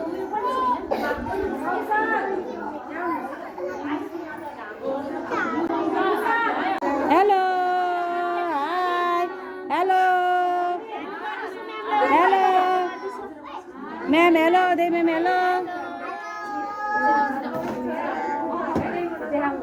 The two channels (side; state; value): both; identical; correlation 1.00